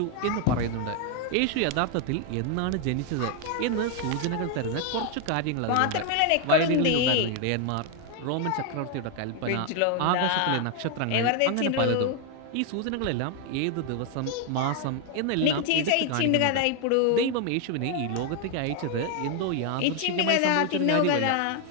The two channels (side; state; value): both; different; correlation 0.01